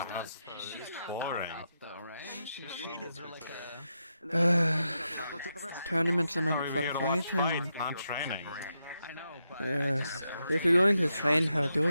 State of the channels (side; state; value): both; inverted; correlation -0.85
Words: that's boring. Though, right? She was like Tournaments are meant We're for here to watch fighting. fight, not training. I know, but If you're going to train her, do